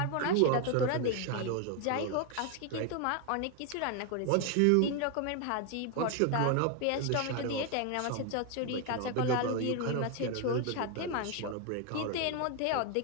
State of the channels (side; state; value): both; different; correlation 0.01